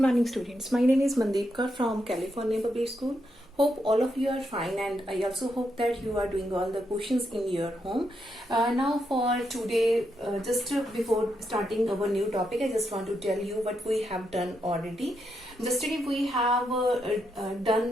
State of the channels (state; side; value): normal; both; correlation 0.81